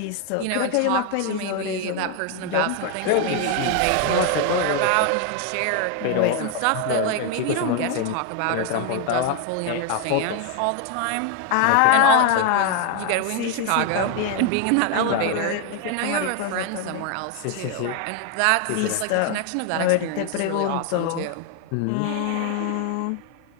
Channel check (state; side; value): different; both; correlation 0.01